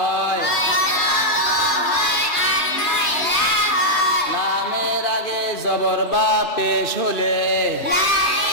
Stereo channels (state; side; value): late; right; 3.3 ms